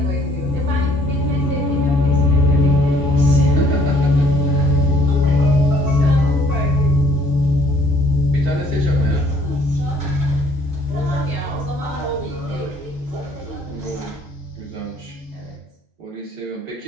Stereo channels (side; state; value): both; normal; correlation 0.61